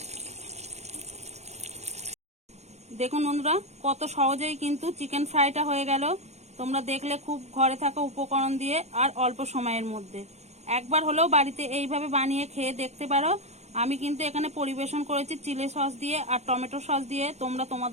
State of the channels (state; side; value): late; left; 0.32 ms